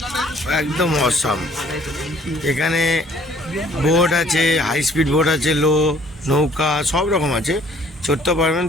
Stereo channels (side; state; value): both; normal; correlation 0.58